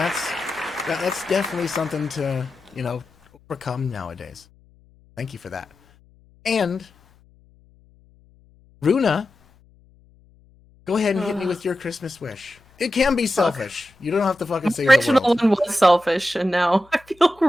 definitely something to, you know, overcome nowadays. Thank you for that. And Runa, go ahead and hit me with your Christmas wish. It can be selfish. You don't have to fucking The save the original world. one was selfish, and now I feel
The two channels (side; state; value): left; noise; hum, 30 dB below the sound